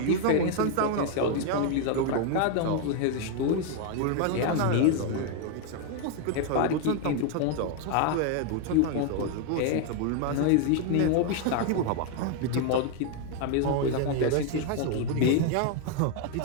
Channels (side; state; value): both; different; correlation 0.00